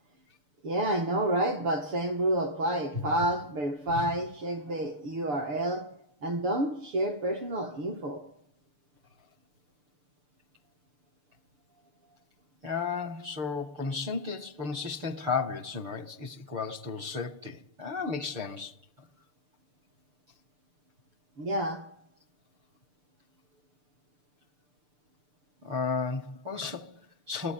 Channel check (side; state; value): left; late; 6.8 ms